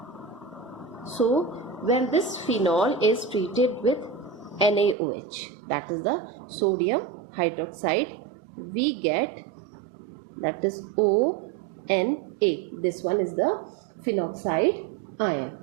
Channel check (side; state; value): left; drops out; at 5.0 s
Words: So when this phenol is treated with NaOH, that is the sodium hydroxide, we get, that is ONA. This one is the phenoxide ion.